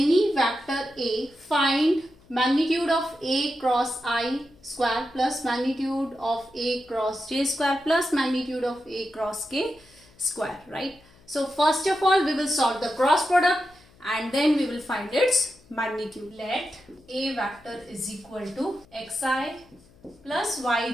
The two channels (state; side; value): noise; left; hum, 28 dB below the sound